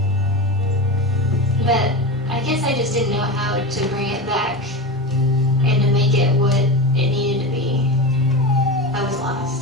But I guess I just didn't know how to bring it back and to make it what it needed to be. I was lost.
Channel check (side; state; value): both; normal; correlation 0.22